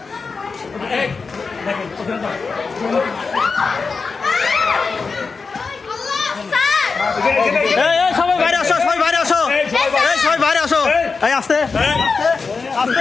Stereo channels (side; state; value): right; quieter; 4.7 dB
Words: সবাই বাইরে আসো, সবাই বাইরে আসো, সবাই বাইরে আসো। এই আস্তে